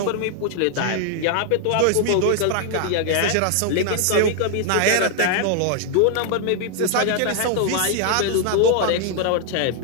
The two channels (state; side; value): different; both; correlation 0.00